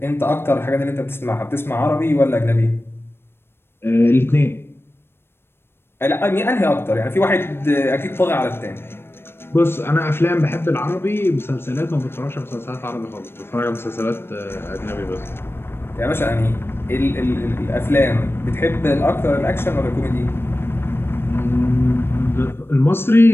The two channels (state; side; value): late; right; 0.11 ms